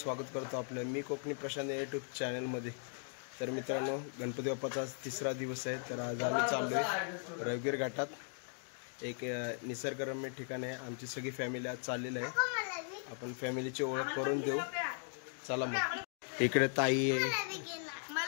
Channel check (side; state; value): right; silent; 52 dB below the other